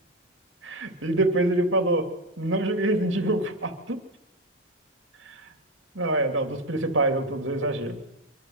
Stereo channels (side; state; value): both; normal; correlation 0.13